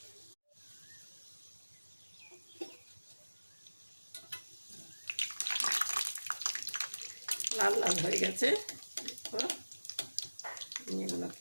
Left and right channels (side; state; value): both; inverted; correlation -1.00